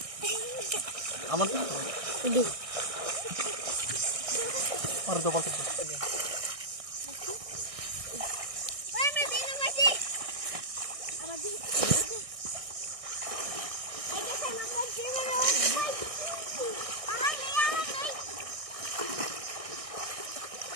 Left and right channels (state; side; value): late; left; 1.6 ms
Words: Aman tu. Ini. Or do balti.